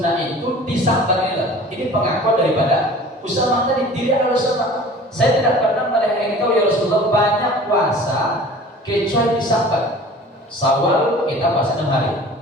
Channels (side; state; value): both; normal; correlation 0.44